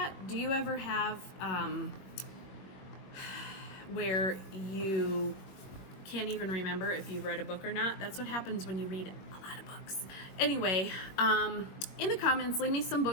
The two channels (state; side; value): late; right; 21 ms